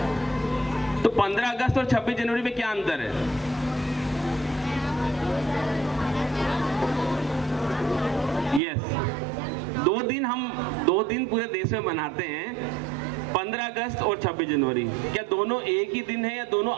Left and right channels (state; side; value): drops out; left; at 8.6 s